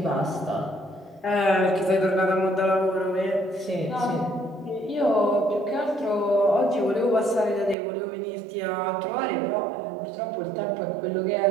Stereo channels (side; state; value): left; drops out; at 7.8 s